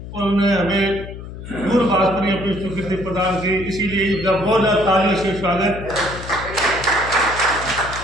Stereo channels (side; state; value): left; noise; hum, 11 dB below the sound